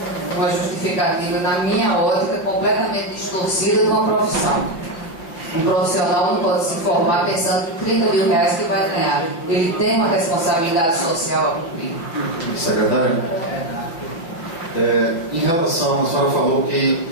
Uma justificativa, na minha ótica, completamente distorcida de uma profissão. Um profissional não pode se formar pensando em R$30.000 que vai ganhar. Ele tem uma responsabilidade social a cumprir. Secretário? Em relação, a senhora falou que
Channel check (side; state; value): right; late; 5.8 ms